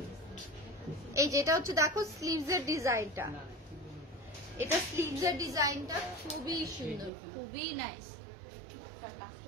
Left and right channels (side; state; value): left; drops out; at 7.1 s